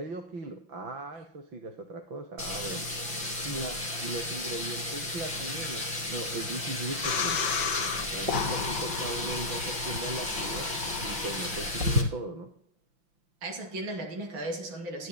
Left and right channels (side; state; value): left; late; 5.8 ms